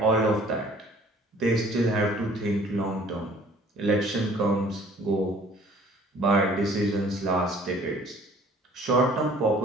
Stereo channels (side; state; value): both; normal; correlation 0.54